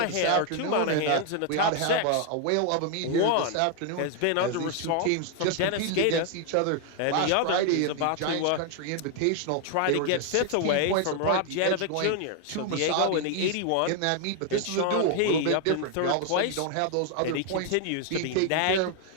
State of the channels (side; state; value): both; different; correlation 0.00